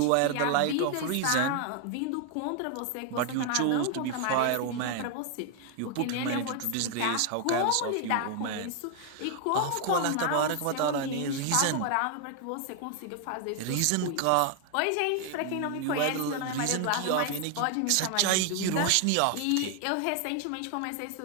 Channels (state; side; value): different; both; correlation 0.00